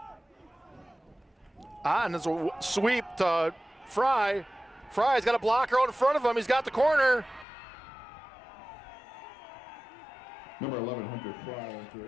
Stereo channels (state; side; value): drops out; right; at 7.5 s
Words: Otten is a sweep to Fry. Fry's got a blocker out in front of him. He's got the corner. Number 11, Hunter